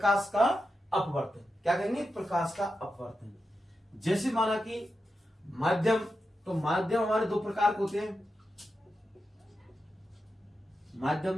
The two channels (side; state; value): both; normal; correlation 0.89